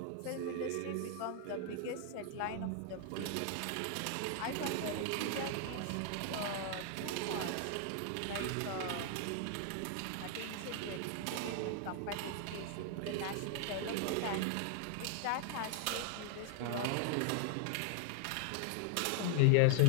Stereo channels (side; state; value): both; different; correlation 0.00